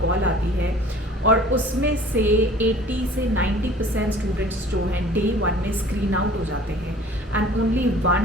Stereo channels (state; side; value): normal; both; correlation 0.48